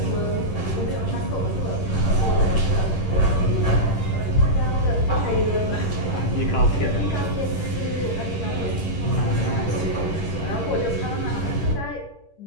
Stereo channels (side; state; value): right; late; 11 ms